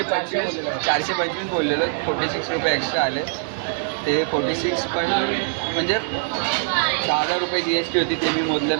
बोललेलो. 46 रुपये एक्स्ट्रा आले. ते 46 पण म्हणजे 10,000 रुपये GST होती, ते मी मोजलं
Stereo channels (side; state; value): left; silent; 64 dB below the other